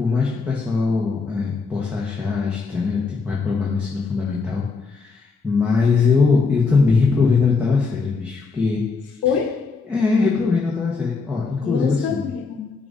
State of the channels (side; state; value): right; quieter; 4.5 dB